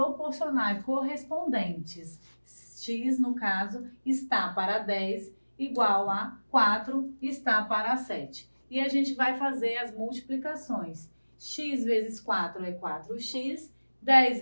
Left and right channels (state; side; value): inverted; both; correlation -1.00